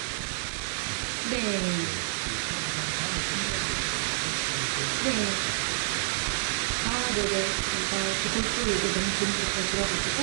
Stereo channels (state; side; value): silent; left; 55 dB below the other